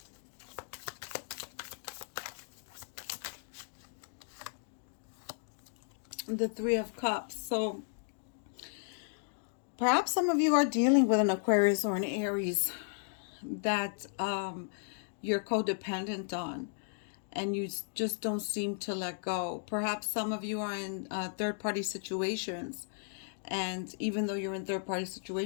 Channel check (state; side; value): silent; right; digital silence